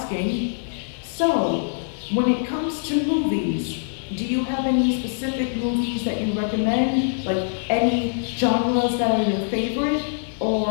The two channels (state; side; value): silent; right; 63 dB below the other